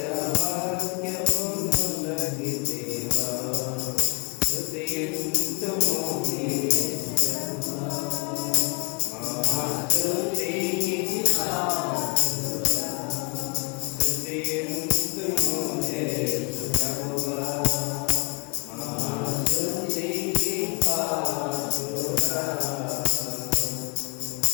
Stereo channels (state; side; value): quieter; right; 33.6 dB